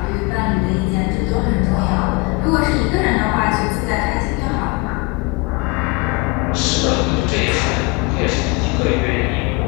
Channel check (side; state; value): right; quieter; 25.9 dB